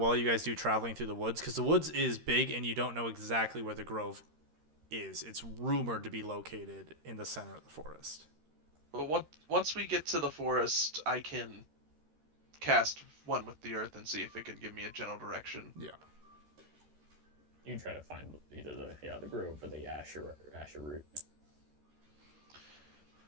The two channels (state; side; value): late; left; 13 ms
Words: you guys do traveling through the woods, because the woods is big and you don't know exactly where the grove is. It's rumored to be located in the center of the forest. But once we get to the forest, I can cast one with the earth and see if it can give me a general direction. Yeah. You can try to find either the grove or the Asher root.